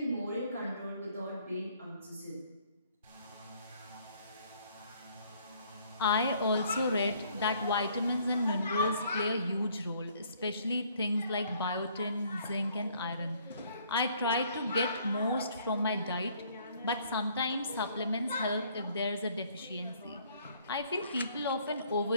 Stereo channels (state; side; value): inverted; both; correlation -0.62